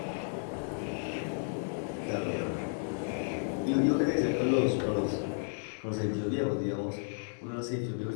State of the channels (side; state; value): right; silent; digital silence